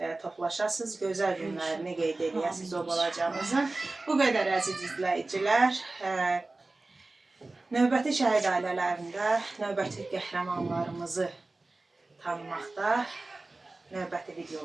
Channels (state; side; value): quieter; left; 3.2 dB